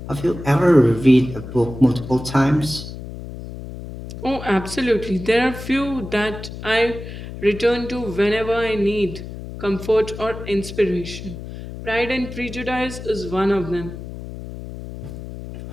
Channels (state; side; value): noise; left; hum, 11 dB below the sound